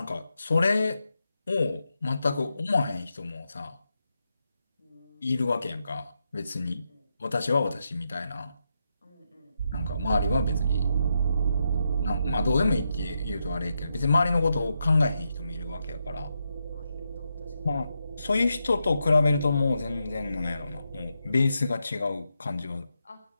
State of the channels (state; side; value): inverted; both; correlation -0.84